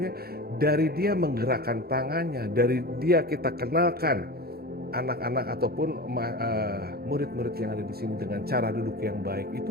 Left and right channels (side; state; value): left; late; 0.45 ms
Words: dari dia menggerakkan tangannya, dari dia kita kenalkan anak-anak ataupun murid-murid yang ada di sini dengan cara duduk yang baik,